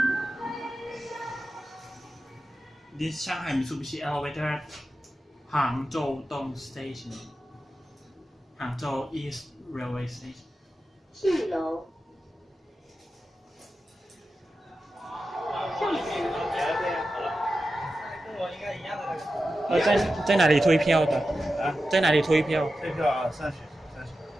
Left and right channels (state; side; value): normal; both; correlation 0.92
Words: This Shanghai Mitsubishi elevator at Hangzhou Dong Station, Hangzhou East Railway Station. 4楼。上次。跟我应该一样的那个。在哪里退票的？啊，在哪里退票？退票啊，上去。